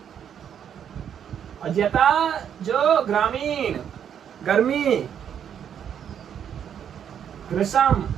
और जता जो ग्रामीण गर्मी,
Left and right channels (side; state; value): left; quieter; 8.7 dB